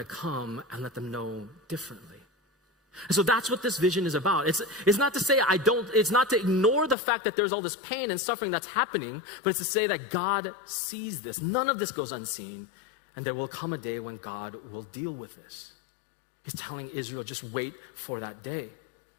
come and let them know differently. And so that's what this vision is about. It's not to say it's not to ignore the fact that there's all this pain and suffering that's happening, but it's to say that God sees this. None of this goes unseen. And there will come a day when God will deal with this. He's telling Israel, just wait for that day.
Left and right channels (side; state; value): right; drops out; at 7.0 s